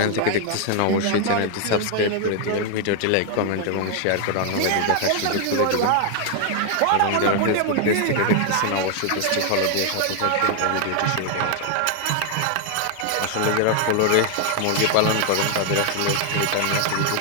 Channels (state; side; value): different; both; correlation 0.00